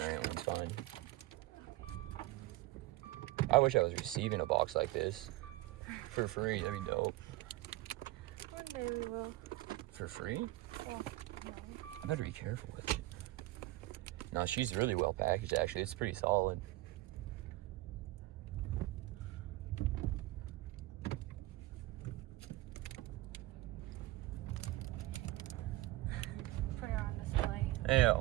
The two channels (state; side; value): quieter; left; 18.1 dB